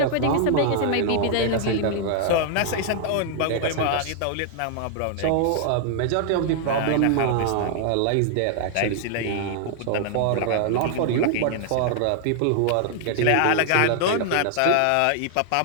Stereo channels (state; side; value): different; both; correlation 0.00